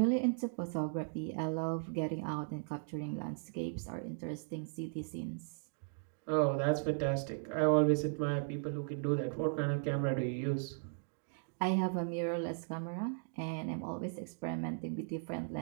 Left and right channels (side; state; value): left; silent; digital silence